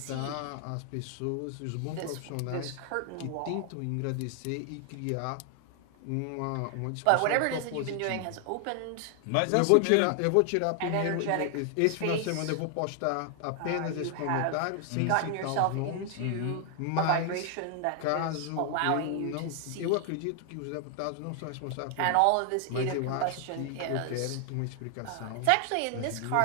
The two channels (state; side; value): different; both; correlation 0.00